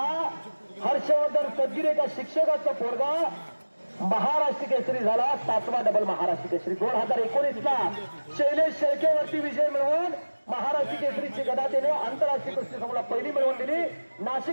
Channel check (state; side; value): inverted; both; correlation -1.00